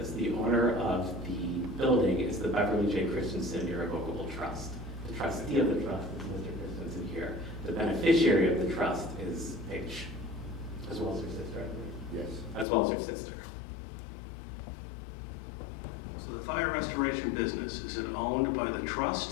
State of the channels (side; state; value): right; drops out; at 12.7 s